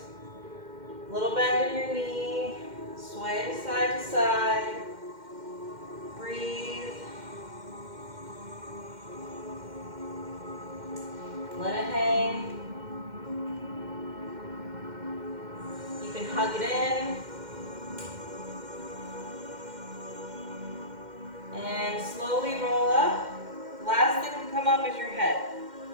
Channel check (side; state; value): left; late; 2.1 ms